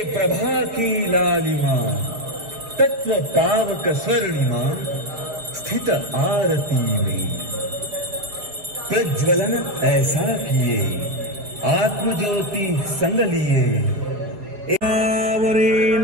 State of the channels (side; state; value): left; late; 4.8 ms